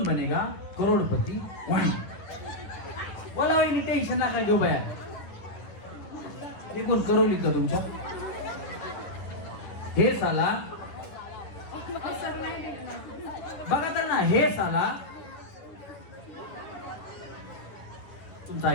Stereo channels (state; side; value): late; right; 9.8 ms